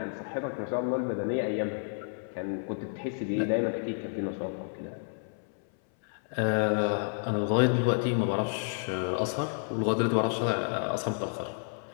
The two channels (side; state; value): right; silent; 58 dB below the other